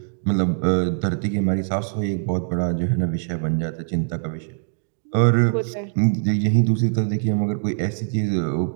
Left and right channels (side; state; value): left; silent; 64 dB below the other